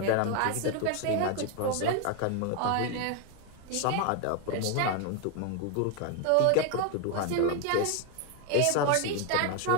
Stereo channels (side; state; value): both; different; correlation 0.01